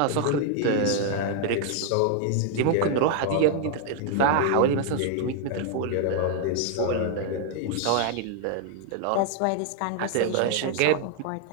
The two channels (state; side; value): different; both; correlation 0.00